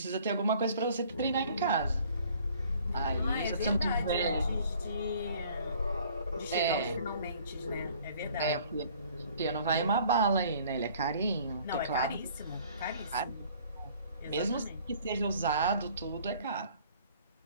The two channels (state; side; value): inverted; both; correlation -0.55